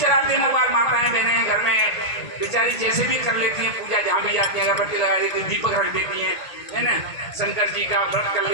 मोबाइल, माताएं बहनें घर में बेचारी जैसे भी कर लेती हैं पूजा, जहाँ भी जाती हैं अगरबत्ती लगा देती हैं, दीपक रख देती हैं, है ना, शंकर जी का व्रत कर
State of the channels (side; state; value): right; late; 1.8 ms